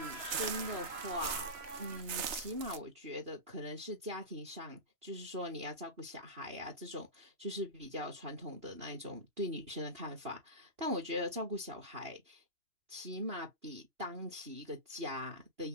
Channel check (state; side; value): late; left; 2.9 ms